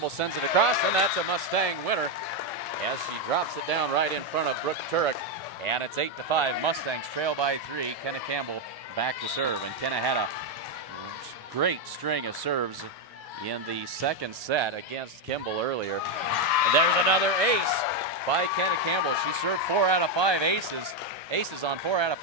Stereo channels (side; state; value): both; normal; correlation 0.04